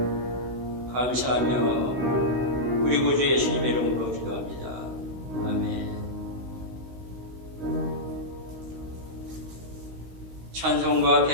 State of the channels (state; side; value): late; left; 16 ms